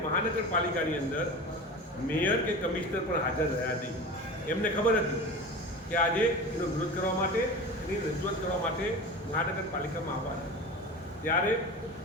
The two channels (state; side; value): normal; both; correlation 0.32